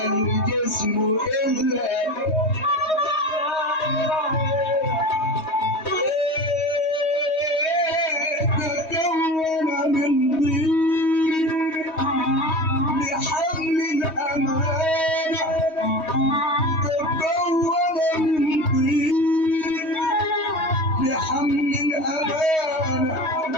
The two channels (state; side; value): late; right; 3.2 ms